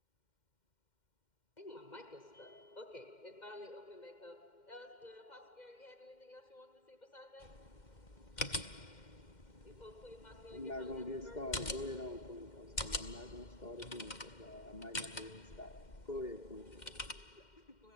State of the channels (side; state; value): right; late; 2.1 ms